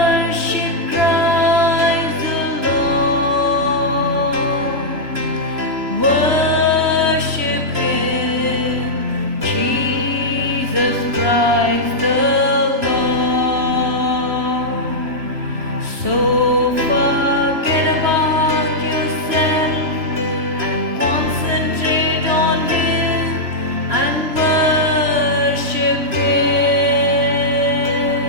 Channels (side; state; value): left; late; 3.0 ms